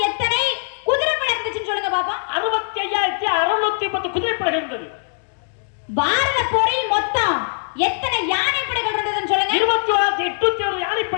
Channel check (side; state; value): right; silent; digital silence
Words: எத்தனை குதிரைப்படை இருந்துச்சுன்னு சொல்லுங்க பாப்பா. 65,610 குதிரைப்படைகள் இருந்தது. பாரத போரில் மொத்தம் எத்தனை யானைப்படைகள் இருந்ததுன்னு சொல்லுங்க. 21,801